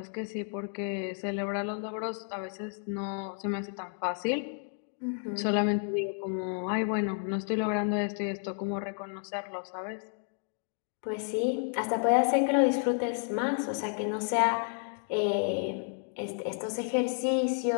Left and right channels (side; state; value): right; silent; 55 dB below the other